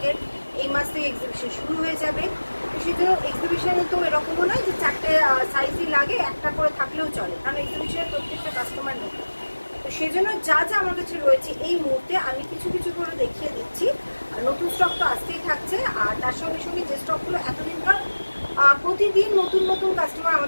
এই মাস থেকে এক্সিবিশন শুরু হয়ে যাবে, তো সেই জন্য এক্সিবিশনে তো এরকমও নয় যে চারটে সাইজই লাগে, একটা করে থাকলেও চলে, কারণ এক্সিবিশনের প্রত্যেকটা কাস্টমার নতুন। তো সেই জন্য যা যা আমার কাছে রয়েছে এই মুহূর্তে আমি কিছু কিছু করে দেখিয়ে দিচ্ছি। নতুন স্টক তো আসতেই থাকছে, আর তার সঙ্গে সঙ্গে যে স্টকগুলো এতদিনকার প্রতিদিন নতুন নতুন কাস্টমার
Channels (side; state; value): both; inverted; correlation -1.00